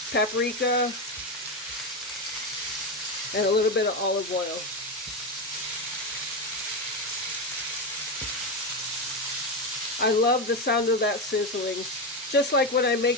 paprika, and a little bit of olive oil. I love the sound of that sizzling. Just like when I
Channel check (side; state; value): both; normal; correlation 0.13